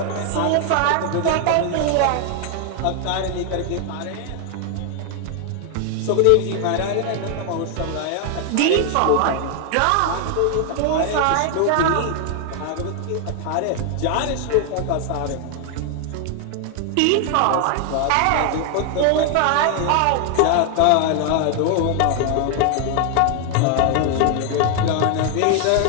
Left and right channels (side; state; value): both; different; correlation 0.00